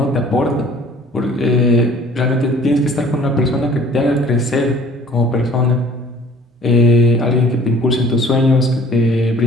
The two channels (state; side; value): normal; both; correlation 0.51